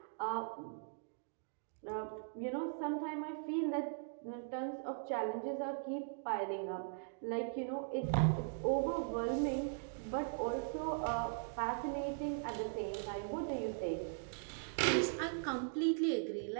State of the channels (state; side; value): silent; left; digital silence